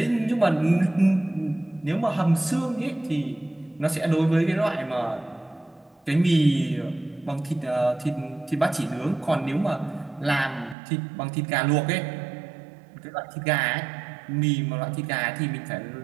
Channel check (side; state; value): left; drops out; at 10.8 s